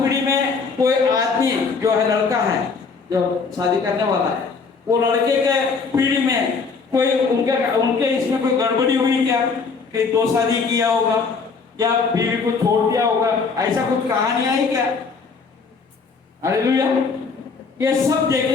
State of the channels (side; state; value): right; quieter; 4.9 dB